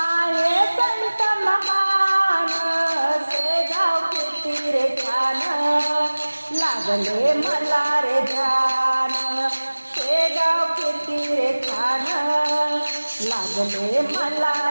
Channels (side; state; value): both; inverted; correlation -1.00